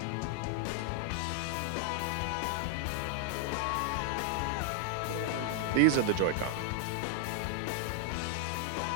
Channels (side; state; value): both; different; correlation 0.00